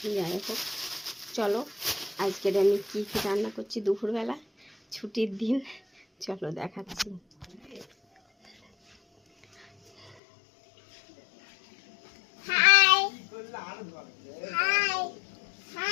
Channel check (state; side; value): drops out; right; at 10.2 s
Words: যাই হোক, চলো আজকের আমি কী কী রান্না করছি দুপুরবেলা, ছুটির দিন, চলো দেখাচ্ছি।